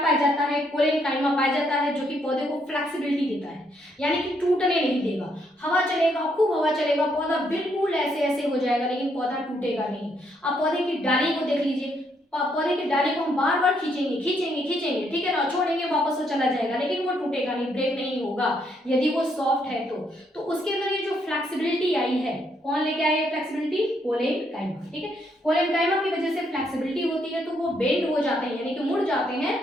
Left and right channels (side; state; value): both; normal; correlation 0.73